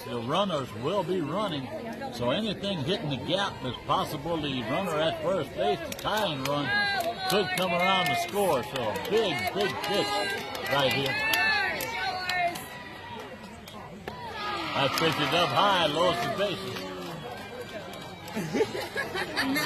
the runners will be running. So anything hitting the gap is possible. The runner at first base, the tying run, could come around to score. So a big, big pitch right here. That pitch is up high, lowers the bases.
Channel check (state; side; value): identical; both; correlation 1.00